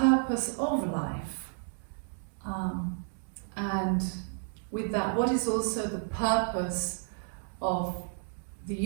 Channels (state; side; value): silent; left; digital silence